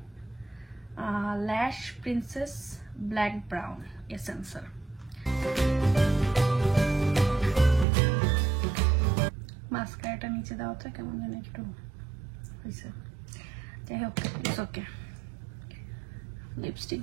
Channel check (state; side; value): drops out; left; at 7.9 s